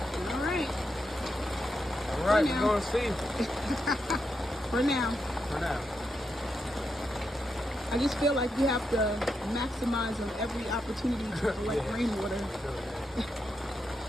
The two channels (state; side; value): normal; both; correlation 0.84